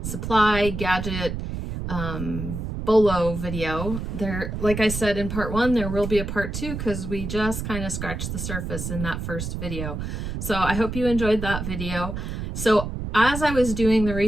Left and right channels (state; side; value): noise; right; rumble, 5 dB below the sound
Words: gadget BOLO video. There, like I said in part 1, there will be a part 2 because we just kind of scratched the surface in that first video. So I hope you enjoyed that video. So as I was doing the